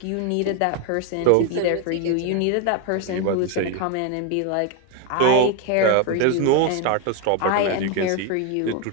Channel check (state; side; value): different; both; correlation 0.02